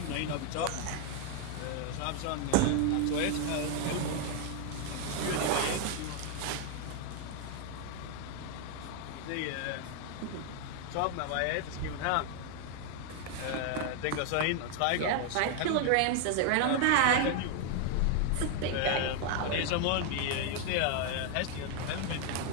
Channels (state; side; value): different; both; correlation 0.00